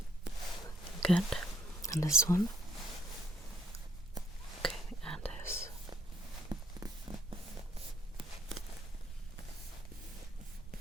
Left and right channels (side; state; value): both; normal; correlation 0.66